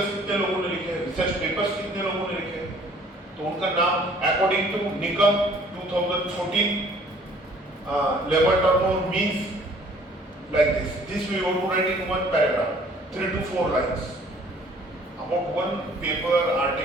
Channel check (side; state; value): both; normal; correlation 0.56